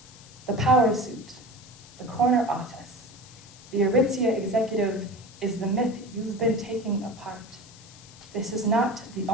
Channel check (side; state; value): left; noise; hiss, 21 dB below the sound